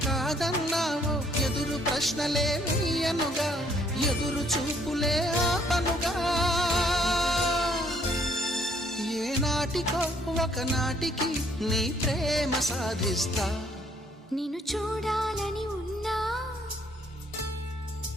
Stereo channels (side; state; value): both; normal; correlation 0.65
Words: కాదన్నావో ఎదురు ప్రశ్నలే వేయనుగా, ఎదురు చూపులే ఆపనుగా. ఏనాటికో ఒకనాటికి నీ ప్రేమ సాధిస్తా. నిన్ను చూడాలని ఉన్నా,